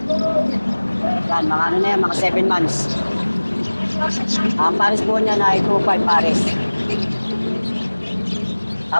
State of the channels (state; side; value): inverted; both; correlation -1.00